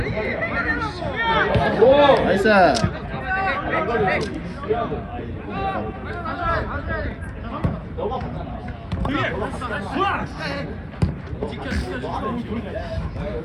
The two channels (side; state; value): both; identical; correlation 1.00